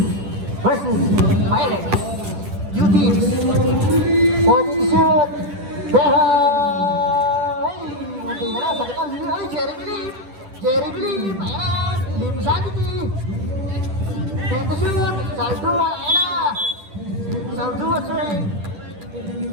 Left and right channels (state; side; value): late; left; 10 ms